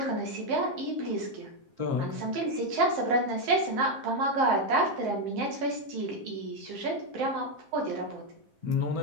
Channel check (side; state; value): left; late; 7.6 ms